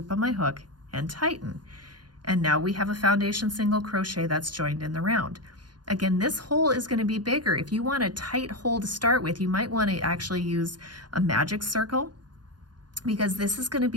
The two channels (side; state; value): left; late; 0.70 ms